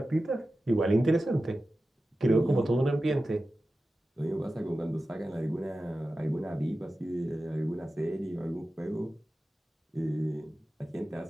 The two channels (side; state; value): both; normal; correlation 0.94